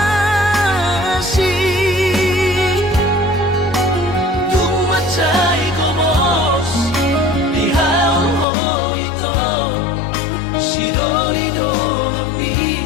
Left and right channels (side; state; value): right; drops out; at 8.5 s